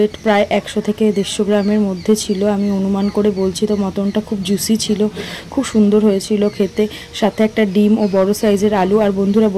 প্রায় 100 থেকে 150 গ্রামের মধ্যে ছিল, আমি অনুমান করে বলছি। তো মটনটা খুব জুসি ছিল, খুব সুন্দর হয়েছিল খেতে, সাথে একটা ডিম ও বড় সাইজের আলু। আর বন্ধুরা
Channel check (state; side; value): identical; both; correlation 1.00